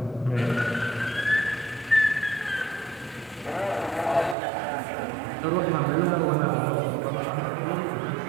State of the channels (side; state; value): left; drops out; at 4.4 s